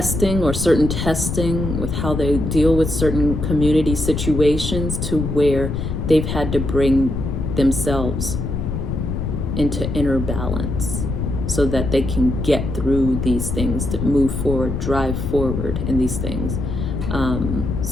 or certain testing with how they deal with certain community situations, to where they've had to bring themselves into inner balance so that they can get through these things, to move forward, drive forward in these things.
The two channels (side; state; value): left; noise; rumble, 3 dB below the sound